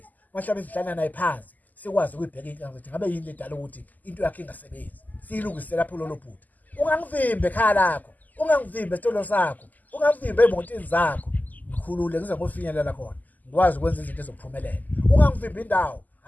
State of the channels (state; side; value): late; right; 0.082 ms